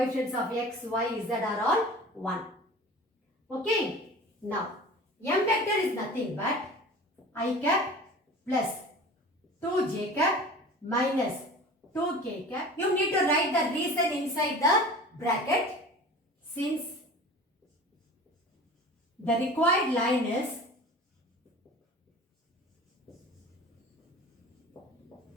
of x, y, z are all 1. Okay. Now, M vector is nothing but I cap plus 2j cap minus 2k cap. You need to write the reason inside the bracket since the required line is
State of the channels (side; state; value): both; normal; correlation 0.40